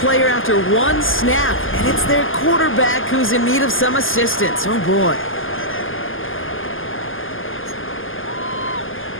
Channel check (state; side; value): late; right; 0.59 ms